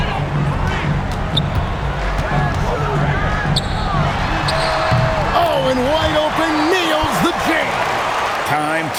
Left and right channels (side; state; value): both; identical; correlation 1.00